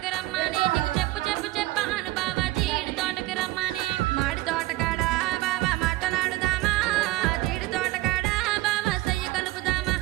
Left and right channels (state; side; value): quieter; left; 18.6 dB